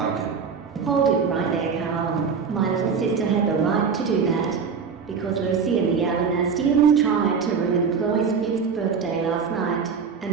Hold it right there, Carl. My little sister had the right to do that, because Lucy and the Alanastians tried to ruin Chloe's 5th birthday last night,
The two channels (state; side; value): quieter; left; 5.9 dB